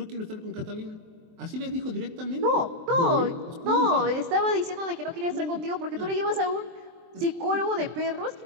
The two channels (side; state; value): left; late; 23 ms